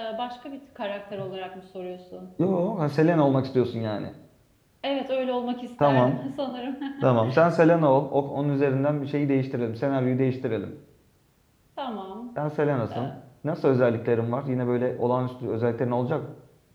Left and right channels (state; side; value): identical; both; correlation 1.00